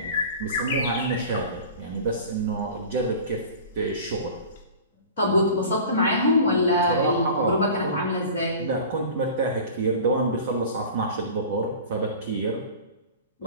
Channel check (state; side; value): inverted; both; correlation -0.38